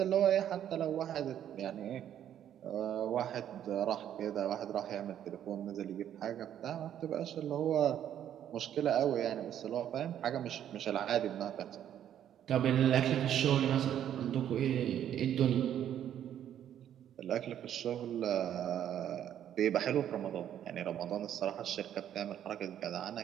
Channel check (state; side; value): quieter; left; 10.4 dB